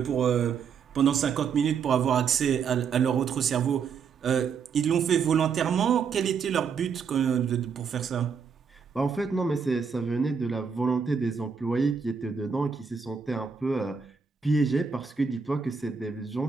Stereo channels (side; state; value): left; quieter; 6.2 dB